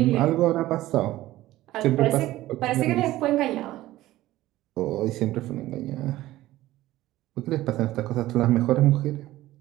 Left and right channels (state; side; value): quieter; left; 16.0 dB